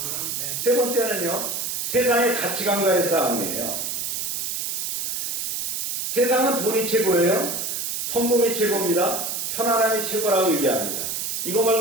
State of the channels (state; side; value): noise; right; hiss, 2 dB below the sound